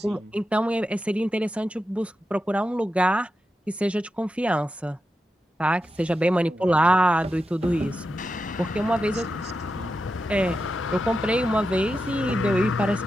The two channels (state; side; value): normal; both; correlation 0.89